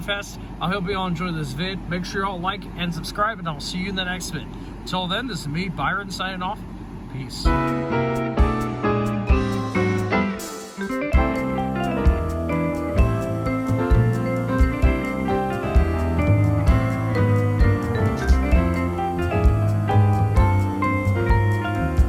I hope you all enjoyed this vid. Make sure you all like and subscribe, and I'll see you in the next vid. Until then, this is me, Byron, signing off. Peace.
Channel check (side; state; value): both; identical; correlation 1.00